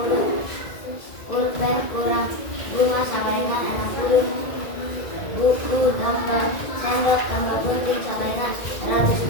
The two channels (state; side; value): late; right; 2.0 ms